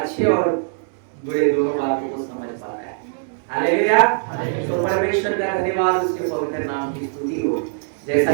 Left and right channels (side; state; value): left; silent; 62 dB below the other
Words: और बुरे दोनों बातों को समझ पाता है। हालेलुया। तो परमेश्वर का धन्यवाद, उसके पवित्र नाम की स्तुति हो।